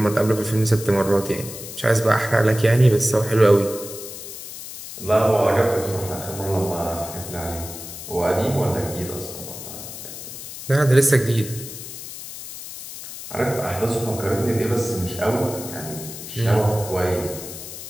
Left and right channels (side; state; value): left; noise; hiss, 11 dB below the sound